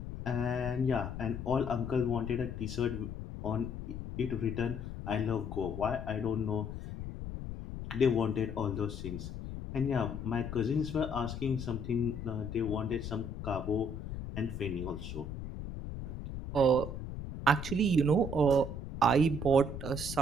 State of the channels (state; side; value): noise; left; rumble, 7 dB below the sound